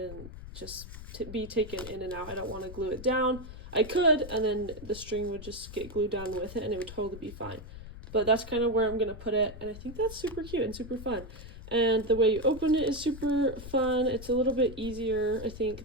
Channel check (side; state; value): left; noise; rumble, 13 dB below the sound